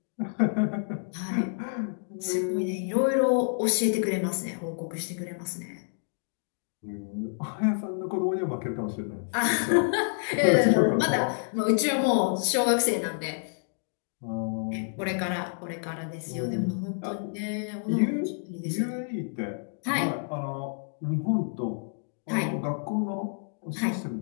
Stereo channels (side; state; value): right; silent; digital silence